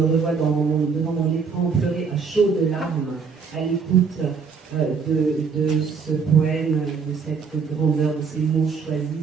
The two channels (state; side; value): quieter; left; 5.6 dB